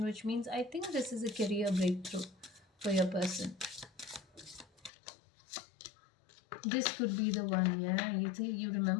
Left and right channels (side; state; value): right; drops out; at 4.9 s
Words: which means I think this is a career breakthrough for your person. This could be the one, yeah. You